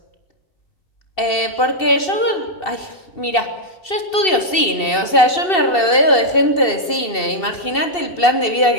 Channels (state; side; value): late; right; 2.7 ms